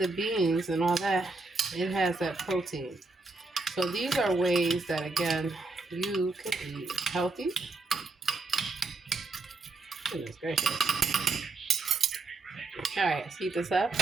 beans and all that, it has that protein. So these are ways that, again, you can eat healthy. Goodness gracious. Alright, let's heat this up.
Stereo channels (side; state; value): left; quieter; 3.5 dB